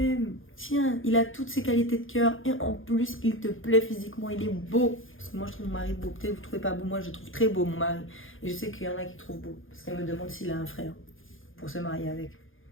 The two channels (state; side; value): late; right; 0.58 ms